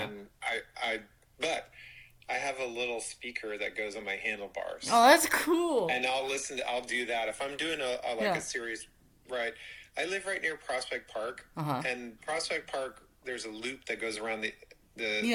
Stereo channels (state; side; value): identical; both; correlation 1.00